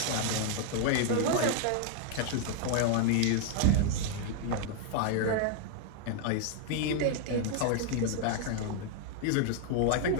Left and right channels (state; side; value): different; both; correlation 0.00